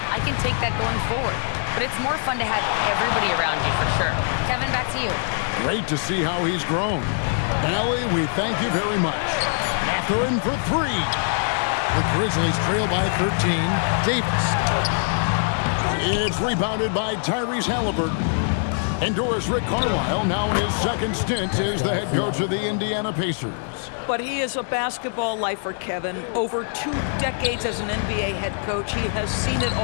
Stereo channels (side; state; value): right; silent; digital silence